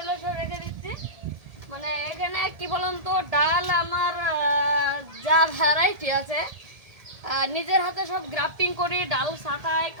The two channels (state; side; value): late; left; 1.7 ms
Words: সব রেখে দিচ্ছি। মানে এখানে কি বলুন তো, ডাল আমার যা ভ্যারাইটি আছে নিজের হাতে সব গ্রাফটিং করি, ডাল ছাঁটাই